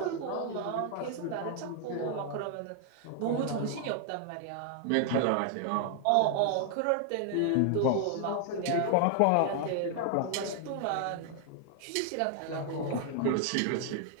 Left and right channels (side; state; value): both; different; correlation 0.00